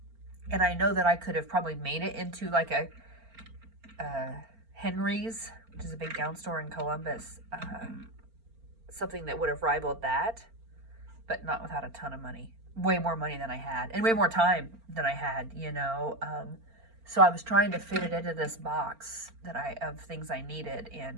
And I know that I could have probably made it into like a Henry's, which is a big gown store in Columbus, something that would have rivaled that, but not without a ton of money. Way more money than I had, and way more time than I had, So I was trying to fit it into this box of things I needed,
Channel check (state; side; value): late; left; 4.4 ms